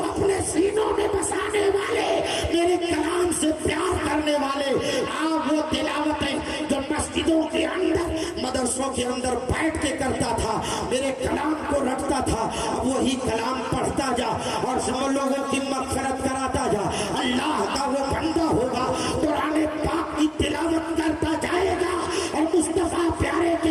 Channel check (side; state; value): both; identical; correlation 1.00